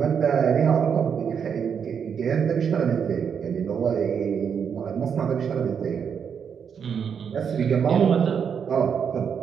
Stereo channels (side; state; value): left; quieter; 7.2 dB